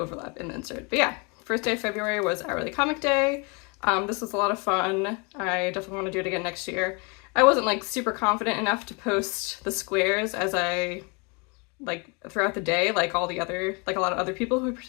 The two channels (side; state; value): right; quieter; 31.4 dB